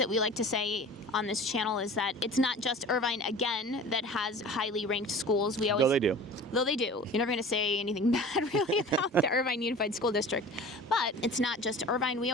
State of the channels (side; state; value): both; normal; correlation 0.40